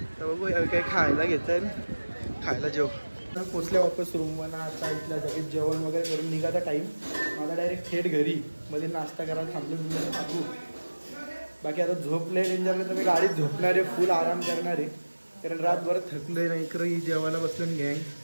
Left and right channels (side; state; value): both; inverted; correlation -1.00